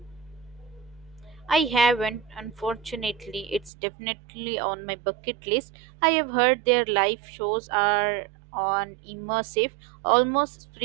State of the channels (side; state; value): left; drops out; at 3.7 s